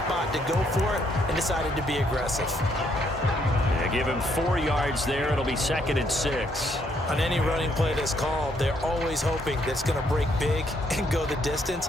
to go for it and decided to be aggressive. Yeah, give him 4 yards there. It'll be 2nd and 6. On any running play that's called, they're always hoping that it's going to break big and go the distance.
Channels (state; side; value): normal; both; correlation 0.71